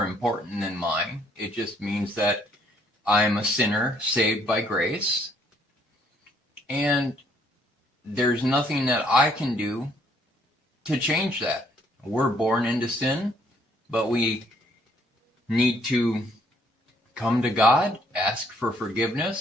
important than mine. It just means that I'm a sinner saved by grace. And there's nothing that I can do to change that. We're born into sin, but we need to come to God, ask for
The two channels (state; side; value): normal; both; correlation 0.66